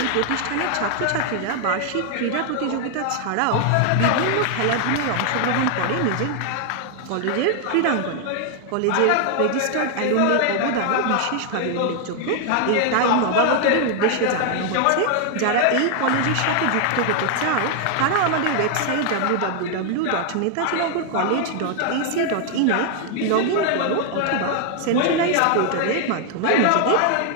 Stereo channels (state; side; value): different; both; correlation 0.00